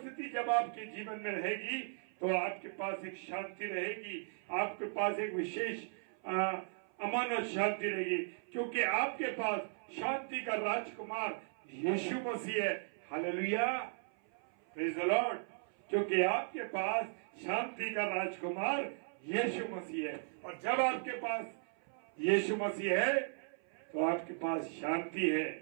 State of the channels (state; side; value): silent; left; 53 dB below the other